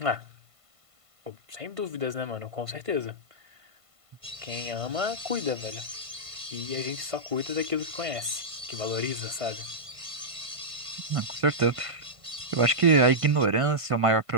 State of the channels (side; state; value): left; late; 1.5 ms